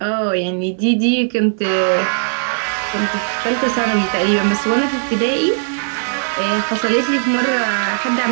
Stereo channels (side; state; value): left; silent; digital silence